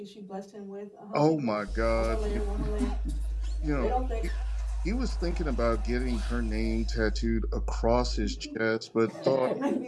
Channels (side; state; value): both; identical; correlation 1.00